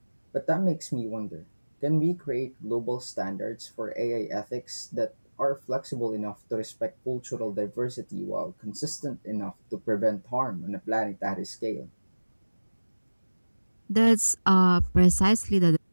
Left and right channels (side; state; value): both; inverted; correlation -1.00